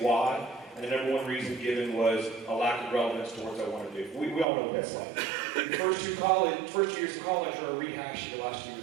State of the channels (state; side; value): drops out; left; at 4.5 s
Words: why. And the number one reason given was a lack of relevance towards what I want to do. We all know what that's like. The first 2 years of college are a rehash of the last 2